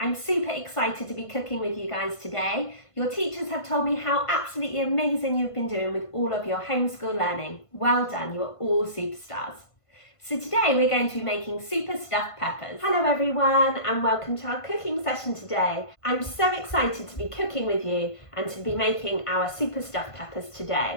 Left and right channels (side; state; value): right; late; 1.5 ms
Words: super excited to be cooking with you guys today. Your teachers have told me how absolutely amazing you've been doing with all of your homeschool learning. Well done, you're all superstars. So today we're going to be making super stuffed peppers. Hello everyone and welcome to our cooking session today. I'm so excited to be cooking with you and to be making our super stuffed peppers today.